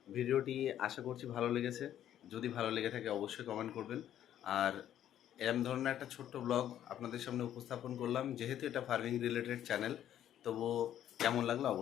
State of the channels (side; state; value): right; quieter; 11.1 dB